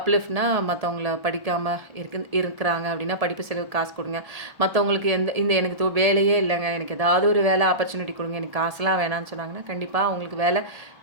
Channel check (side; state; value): left; late; 1.7 ms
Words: மற்றவங்கள படிக்காமல் இருக்கிறாங்க அப்படின்னா படிப்பு செலவுக்கு காசு கொடுங்க. மற்றவங்களுக்கு இந்த எனக்கு வேலையே இல்லைங்க, எனக்கு ஏதாவது ஒரு வேலை ஆப்பர்ச்சுனிட்டி கொடுங்க, எனக்கு காசுலாம் வேணான்னு சொன்னாங்கன்னா கண்டிப்பாக அவங்களுக்கு